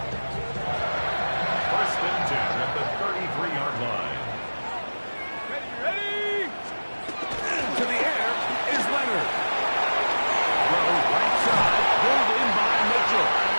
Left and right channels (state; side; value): inverted; both; correlation -1.00